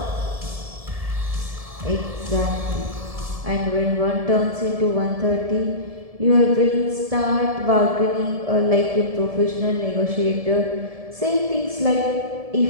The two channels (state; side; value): late; left; 1.7 ms